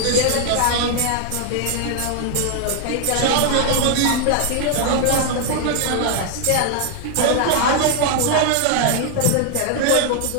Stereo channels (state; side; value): different; both; correlation 0.00